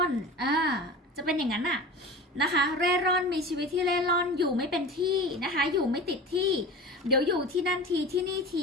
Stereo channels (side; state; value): both; normal; correlation 0.34